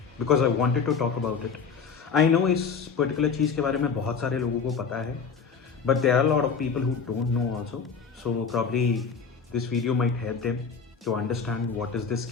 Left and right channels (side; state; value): right; quieter; 5.9 dB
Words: because I wanted to talk about it. I know इस पर्टिकुलर चीज़ के बारे में बहुत सारे लोगों को पता है, but there are lot of people who don't know also. So probably this video might help them to understand what is this